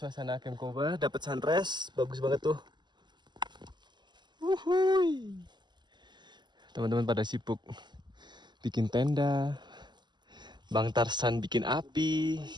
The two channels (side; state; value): left; late; 0.21 ms